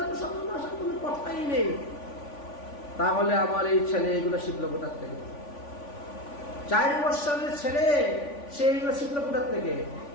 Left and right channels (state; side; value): late; right; 3.5 ms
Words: তো সাধু আসার কোনো কথাই নেই। তাহলে আমার এই ছেলে এগুলো শিখলো কোথার থেকে? 4 বৎসরের ছেলে, সে এইগুলো শিখলো কোথার থেকে?